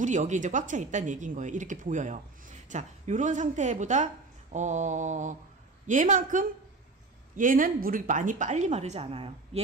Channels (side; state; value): left; quieter; 3.5 dB